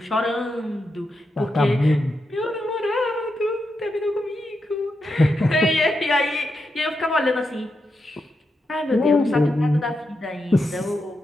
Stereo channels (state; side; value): normal; both; correlation 0.85